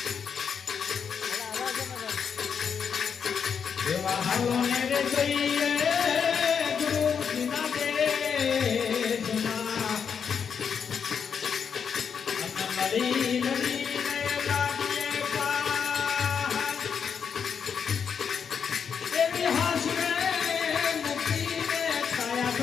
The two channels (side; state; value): right; quieter; 6.9 dB